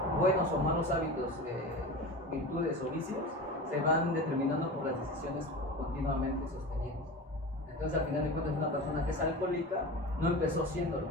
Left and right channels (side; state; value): both; normal; correlation 0.30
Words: buenos o malos hábitos, virtudes o vicios, se van determinando por las decisiones continuamente sostenidas. Entonces, al final de cuentas, una persona que es alcohólica no empezó siéndolo.